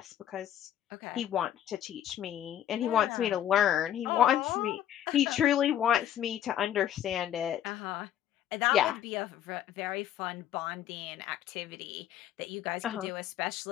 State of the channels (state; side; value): quieter; right; 11.0 dB